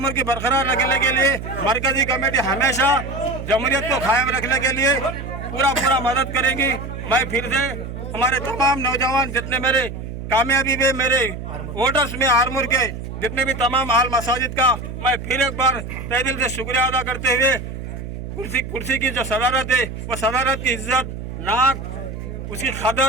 की बरकरार रखने के लिए मरकजी कमेटी हमेशा जमहूरियत को कायम रखने के लिए पूरा मदद करेंगी। मैं फिर से हमारे तमाम नौजवान जितने मेरे कामयाबी में मेरे वोटर्स में आरमूर के जितने भी तमाम आल मसाजिद का मैं फिर एक बार तहे दिल से शुक्रिया अदा करते हुए कुर्सी की जो सदारत है वो सदारत की इज्जत, नाक, उसकी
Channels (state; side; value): noise; right; hum, 8 dB below the sound